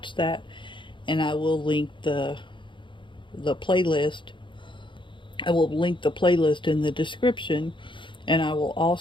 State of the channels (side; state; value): right; late; 0.24 ms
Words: that, and I will link the playlist. I will link the playlist in the description, and I will